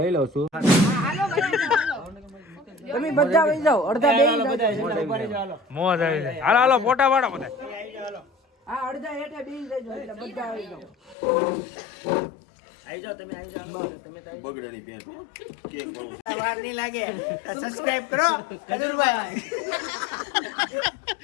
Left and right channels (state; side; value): drops out; right; at 11.2 s